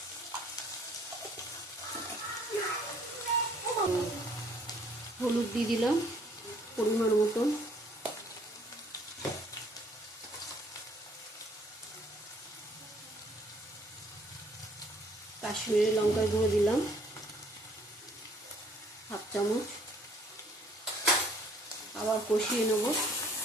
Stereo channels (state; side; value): normal; both; correlation 0.61